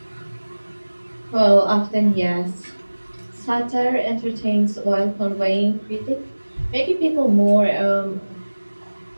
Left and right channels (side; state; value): both; inverted; correlation -1.00